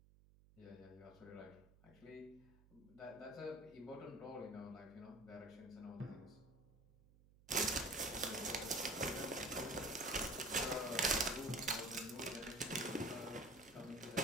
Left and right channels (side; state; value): right; noise; hum, 25 dB below the sound